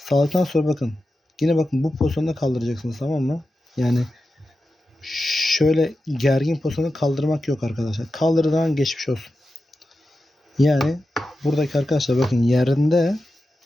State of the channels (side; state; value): both; normal; correlation 0.92